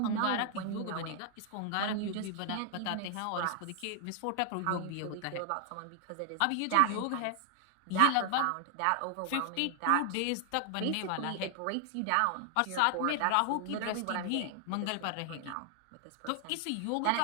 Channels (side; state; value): both; different; correlation 0.00